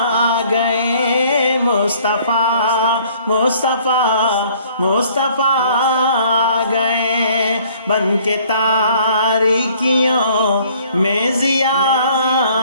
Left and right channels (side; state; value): both; inverted; correlation -0.58